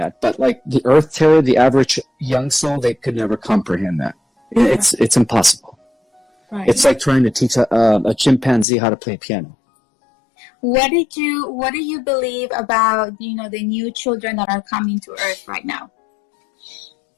but like the Earth Terror, the average young soul, they could never comprehend that. It's impossible. Right. It's like trying to teach a chimpanzee how to play piano. What do you believe about the new children that are coming to Earth right now?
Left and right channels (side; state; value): right; drops out; at 8.7 s